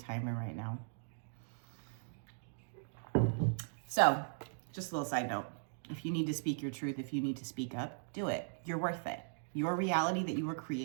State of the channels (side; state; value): left; silent; digital silence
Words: right now. So, just a little side note. If you need to speak your truth, if you need to speak up, do it. You're worth it. Your reality that you are